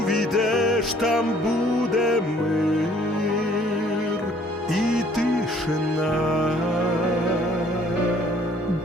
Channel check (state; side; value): normal; both; correlation 0.59